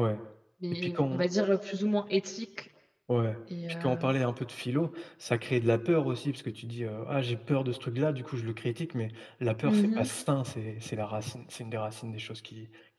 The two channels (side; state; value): both; identical; correlation 1.00